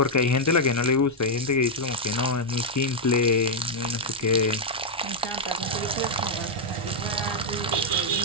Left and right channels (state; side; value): normal; both; correlation -0.02